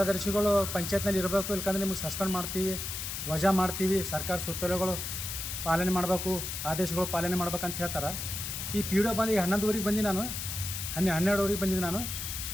ಪಂಚಾಯತ್ನಲ್ಲಿ ಇರಬೇಕು, ಇಲ್ಕಂದ್ರೆ ನಿಮಗೆ ಸಸ್ಪೆಂಡ್ ಮಾಡ್ತೀವಿ, ವಜಾ ಮಾಡ್ತೀವಿ, ಸರ್ಕಾರ ಸುತ್ತೋಲೆಗಳು ಪಾಲನೆ ಮಾಡಬೇಕು, ಆದೇಶಗಳು ಪಾಲನೆ ಮಾಡ್ಬೇಕಂತ ಹೇಳ್ತಾರೆ. ಈ PDO ಬಂದು ಈಗ 11:30ಗೆ ಬಂದು ನಾನು 12:30ಗೆ ಬಂದಿದ್ದೆ. ನಾನು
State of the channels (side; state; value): left; noise; hiss, 5 dB below the sound